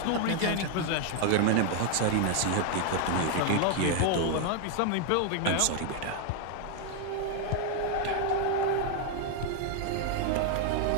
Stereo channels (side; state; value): both; different; correlation 0.00